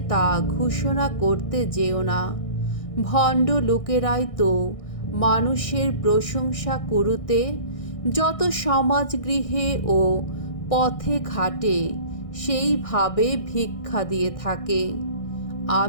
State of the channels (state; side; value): late; right; 1.6 ms